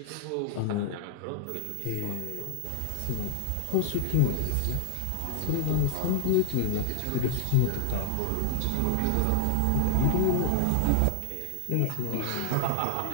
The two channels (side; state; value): both; different; correlation 0.00